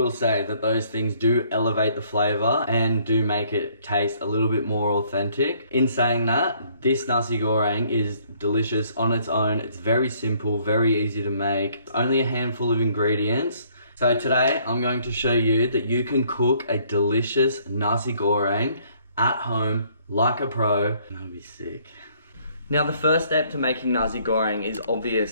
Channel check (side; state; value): both; inverted; correlation -0.63